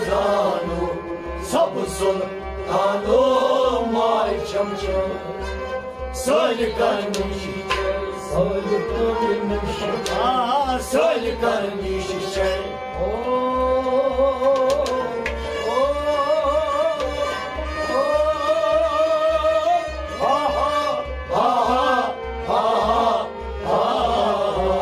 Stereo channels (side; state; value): both; identical; correlation 1.00